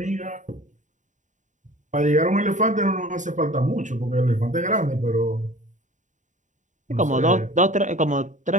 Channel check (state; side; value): late; left; 0.36 ms